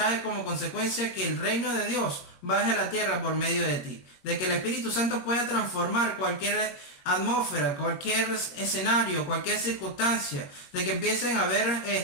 como consecuencia que el reino de Dios baje a la tierra por medio de ti. De que el Espíritu Santo pueda transformar cualquier atmósfera, cualquier escenario, cualquier circunstancia. De que empiecen a haber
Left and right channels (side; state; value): right; late; 21 ms